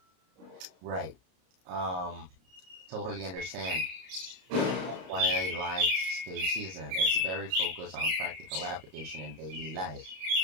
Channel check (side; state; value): left; late; 32 ms